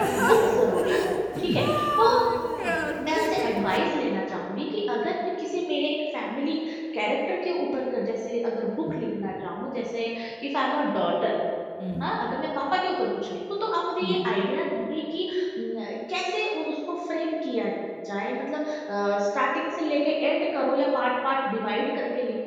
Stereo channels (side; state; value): both; identical; correlation 1.00